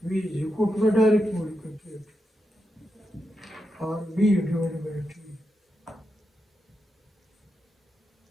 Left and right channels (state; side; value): normal; both; correlation 0.86